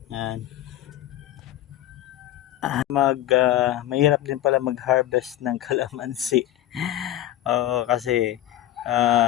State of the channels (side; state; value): right; quieter; 13.8 dB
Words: Mahirap din pala mag-harvest ng kalamansi. Oo, kasi